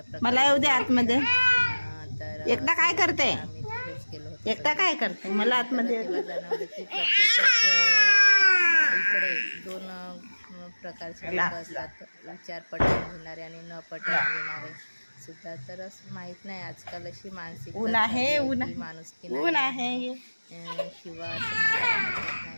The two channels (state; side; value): inverted; both; correlation -1.00